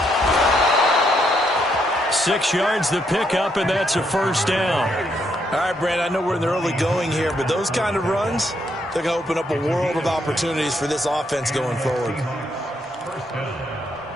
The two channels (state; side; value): normal; both; correlation 0.75